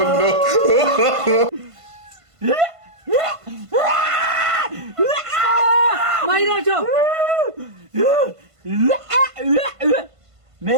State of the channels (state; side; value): late; left; 1.5 ms